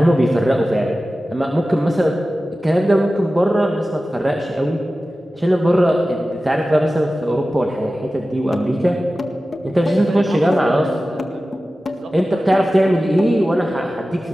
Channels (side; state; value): both; normal; correlation 0.95